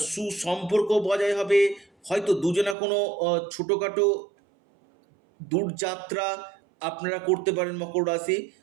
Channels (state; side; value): drops out; left; at 2.8 s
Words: সুসম্পর্ক বজায় হবে। হয়তো দুজনা কোনো ছোটোখাটো দূরযাত্রা আপনারা করতে পারেন মকর রাশি।